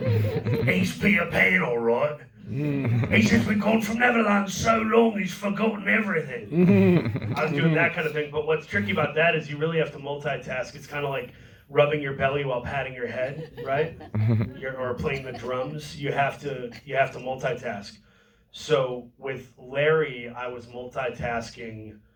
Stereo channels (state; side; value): identical; both; correlation 1.00